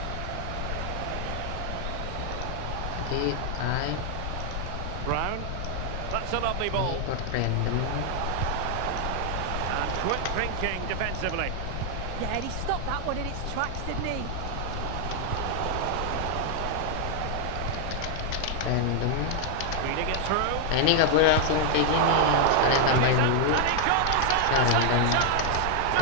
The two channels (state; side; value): different; both; correlation 0.00